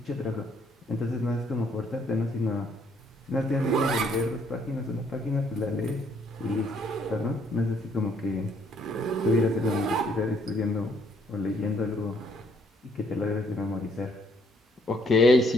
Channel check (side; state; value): both; normal; correlation 0.67